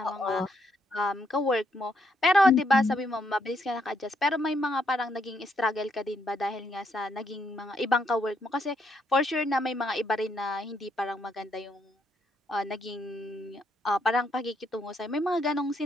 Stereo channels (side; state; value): both; normal; correlation 0.75